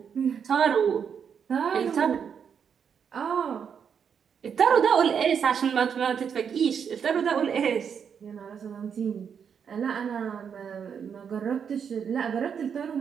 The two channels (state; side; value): quieter; left; 7.2 dB